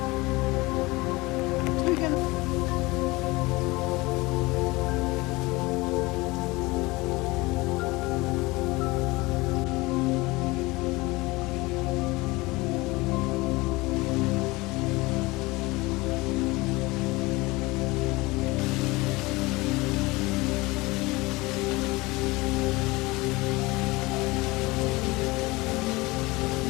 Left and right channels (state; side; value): quieter; right; 22.5 dB